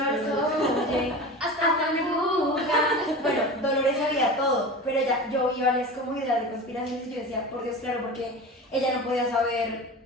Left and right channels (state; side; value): normal; both; correlation 0.31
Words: hasta mi boca. Bueno, Dolores sabía todo, pero yo vi varias como ideas de conspiraciones y yo decía, por Dios, claro, porque ella no podía saber,